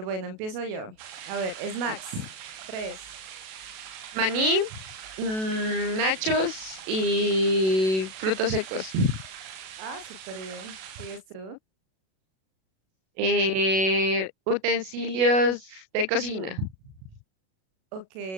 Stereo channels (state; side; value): late; left; 37 ms